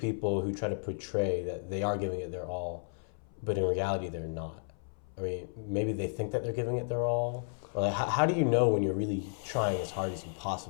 who try to portray that they are giving it their all, but in reality they're not? I mean, maybe they think that they're giving it their all. Or like, how do you know when you're really trying as hard as you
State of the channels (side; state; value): right; silent; 56 dB below the other